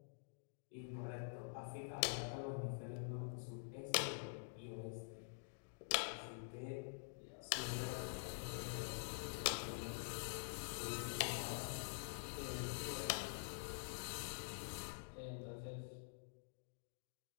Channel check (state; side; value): silent; right; digital silence